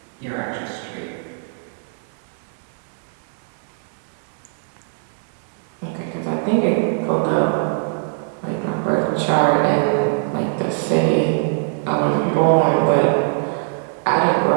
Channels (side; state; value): left; silent; 57 dB below the other